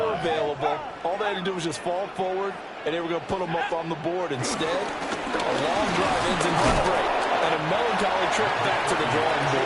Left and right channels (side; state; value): both; identical; correlation 1.00